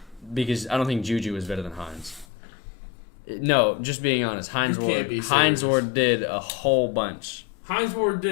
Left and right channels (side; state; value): right; drops out; at 2.2 s